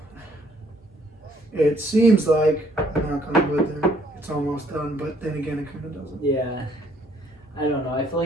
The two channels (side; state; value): both; normal; correlation 0.64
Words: seems like, I'm not going to go there, it's almost done, but then again, it kind of doesn't. Yeah. I don't know. I feel